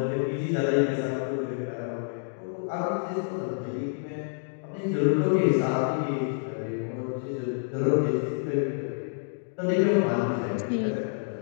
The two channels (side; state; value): right; silent; digital silence